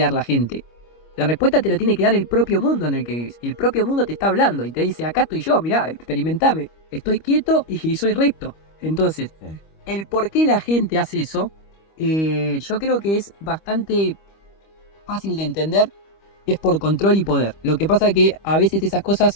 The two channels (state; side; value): late; right; 25 ms